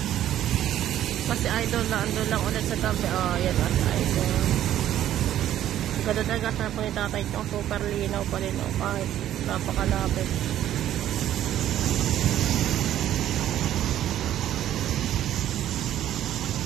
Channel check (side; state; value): left; quieter; 12.0 dB